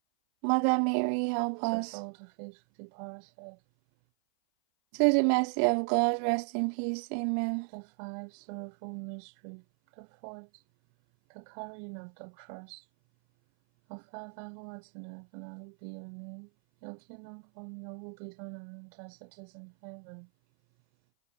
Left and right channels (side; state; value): left; silent; 55 dB below the other